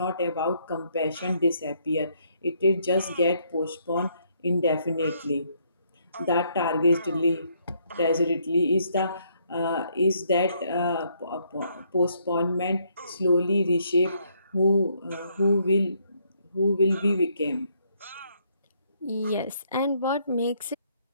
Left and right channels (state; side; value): inverted; both; correlation -0.71